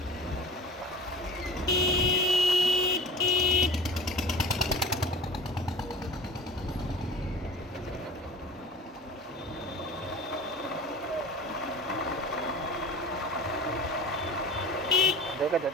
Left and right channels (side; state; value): both; normal; correlation 0.38